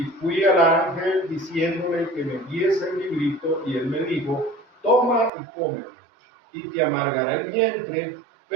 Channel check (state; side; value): drops out; left; at 5.3 s